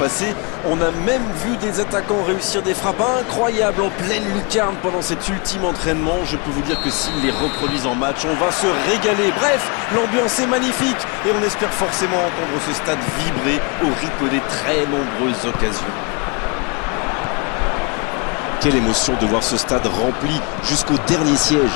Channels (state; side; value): quieter; right; 31.9 dB